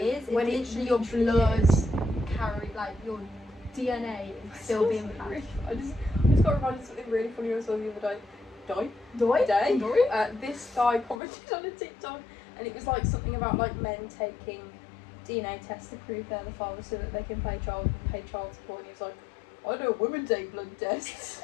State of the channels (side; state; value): right; drops out; at 11.2 s